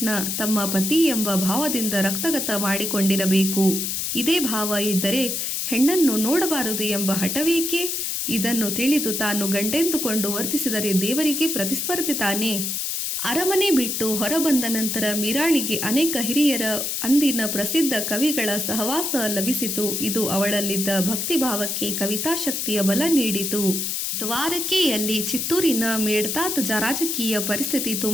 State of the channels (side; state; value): left; noise; hiss, 1 dB below the sound